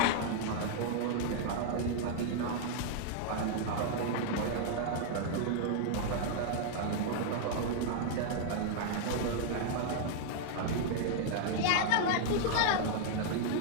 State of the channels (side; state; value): both; different; correlation -0.01